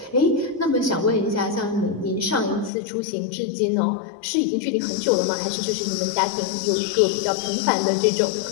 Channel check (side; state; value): right; drops out; at 2.7 s